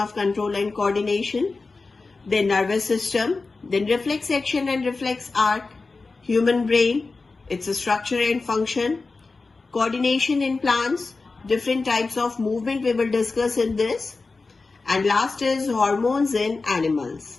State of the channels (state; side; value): quieter; right; 3.9 dB